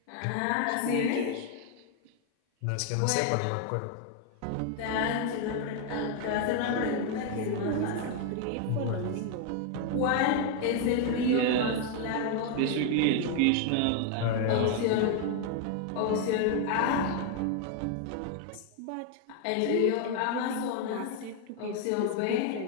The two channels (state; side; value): different; both; correlation 0.01